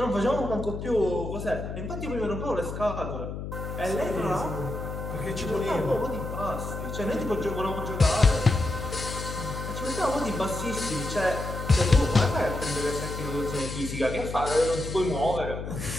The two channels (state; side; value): noise; left; hum, 7 dB below the sound